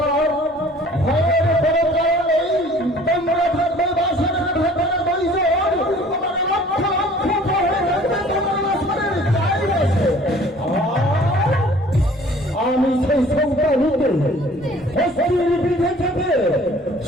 ভয়ের কোনো কারণ নেই। তোমরা থাকবে বাসনের ভেতরে দুইজন, তোমার লক্ষ লক্ষ ভয়ে থাকবে তোমার বাসনের চারিপাশে। আমি সেই সন্তানকে হস্তির বিধে থেকে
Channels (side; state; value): both; normal; correlation 0.51